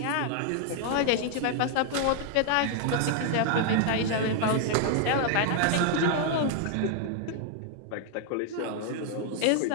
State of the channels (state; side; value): different; both; correlation 0.00